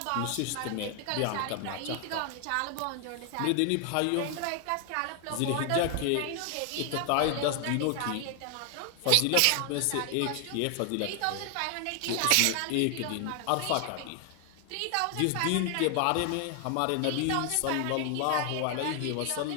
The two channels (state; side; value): different; both; correlation 0.00